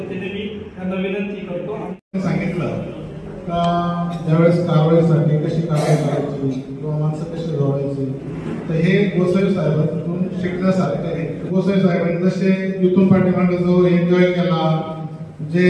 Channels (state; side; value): identical; both; correlation 1.00